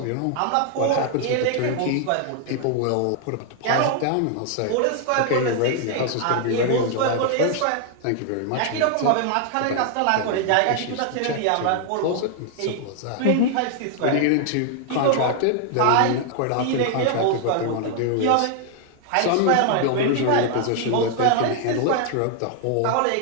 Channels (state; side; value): different; both; correlation 0.00